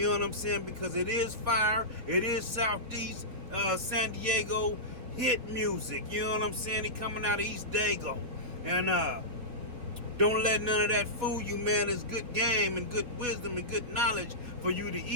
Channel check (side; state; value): left; late; 4.4 ms